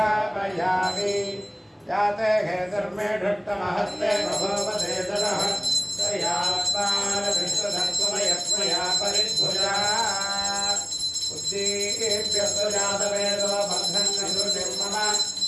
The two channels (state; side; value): identical; both; correlation 1.00